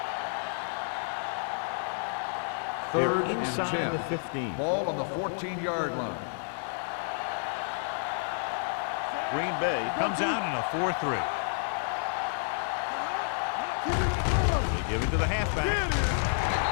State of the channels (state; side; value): silent; right; digital silence